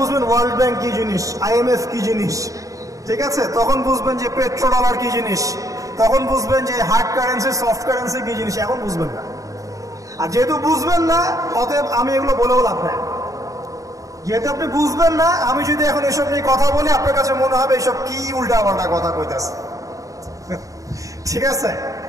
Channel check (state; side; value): late; left; 0.16 ms